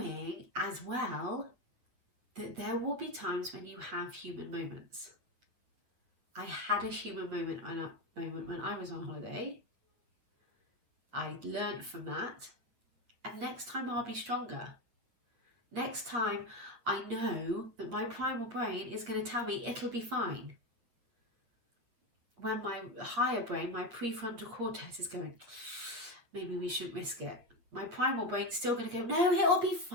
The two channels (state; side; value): late; left; 8.7 ms